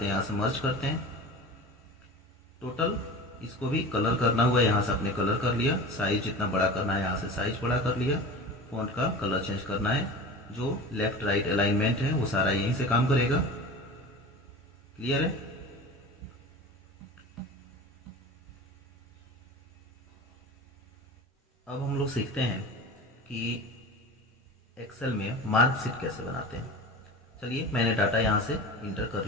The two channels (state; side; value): normal; both; correlation 0.34